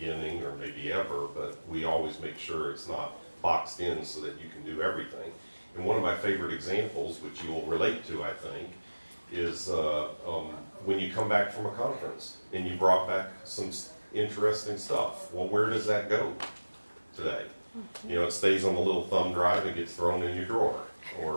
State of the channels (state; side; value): inverted; both; correlation -1.00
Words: or maybe ever, but we always make sure it's not boxed in so that you can do everything. And one of my favorite examples, which you will relate to, I think, is when you come back from a conference and you brought back some interesting stuff. Well, where does that go today? It stays on the little thumb drive and gets thrown in your drawer.